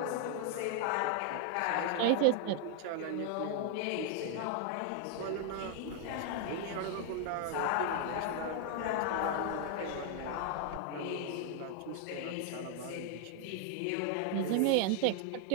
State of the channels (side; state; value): both; different; correlation 0.00